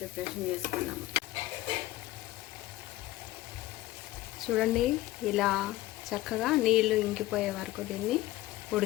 ప్రిపరేషన్ చేసుకున్నాము. చూడండి, ఇలా చక్కగా నీళ్లు ఇంకిపోయే వరకు దీన్ని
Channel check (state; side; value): quieter; right; 16.7 dB